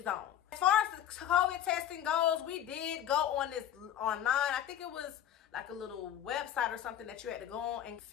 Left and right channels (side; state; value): right; quieter; 10.6 dB